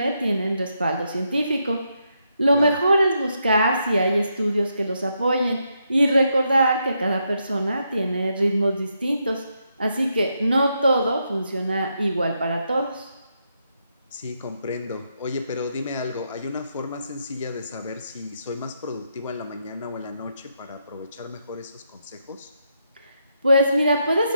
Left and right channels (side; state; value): both; inverted; correlation -0.80